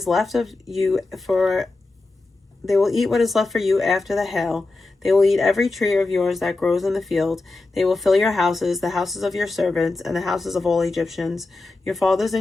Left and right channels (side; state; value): right; quieter; 3.3 dB